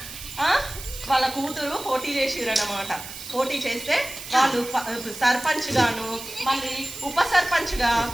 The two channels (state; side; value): noise; right; hiss, 12 dB below the sound